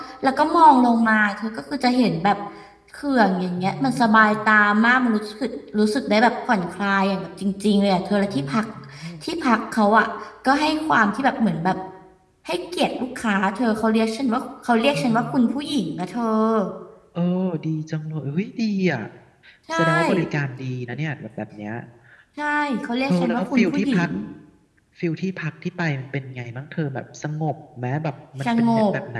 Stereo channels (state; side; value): identical; both; correlation 1.00